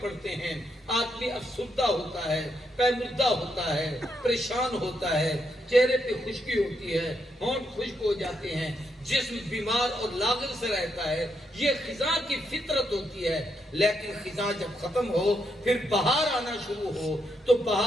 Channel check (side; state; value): both; normal; correlation 0.79